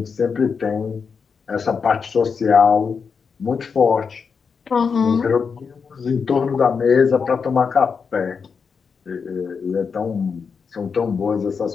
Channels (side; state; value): right; quieter; 5.8 dB